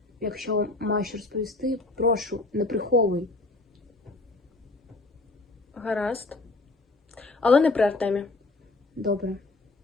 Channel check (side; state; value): right; quieter; 3.1 dB